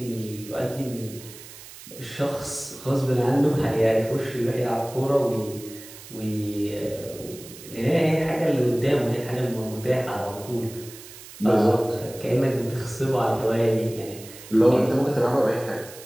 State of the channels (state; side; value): noise; right; hiss, 17 dB below the sound